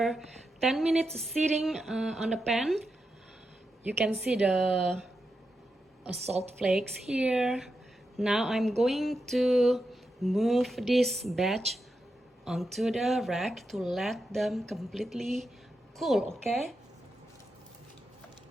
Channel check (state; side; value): normal; both; correlation 0.87